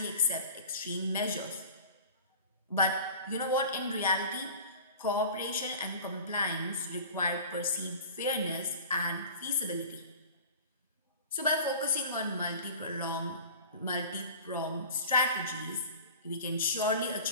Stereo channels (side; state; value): both; inverted; correlation -0.40